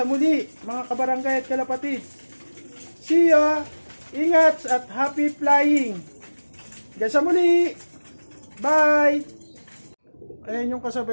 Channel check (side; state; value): both; inverted; correlation -1.00